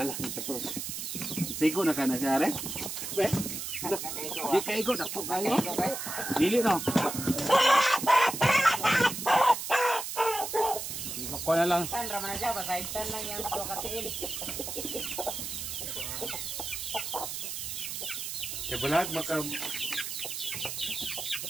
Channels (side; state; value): right; noise; hiss, 5 dB below the sound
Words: tapos. Sigo na kana siya re. Be. Di kaigo na po kayo. Dili no. Sigo ko na lang. Tan raman aja basaitan lang yang do katiin. Bulag makabuhi.